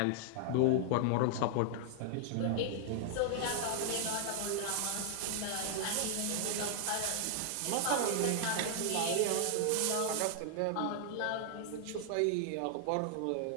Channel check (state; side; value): different; both; correlation -0.01